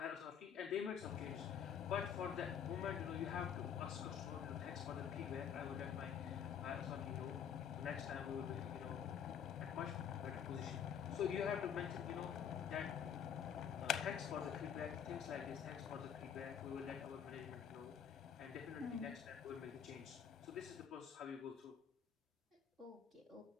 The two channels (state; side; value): quieter; right; 8.2 dB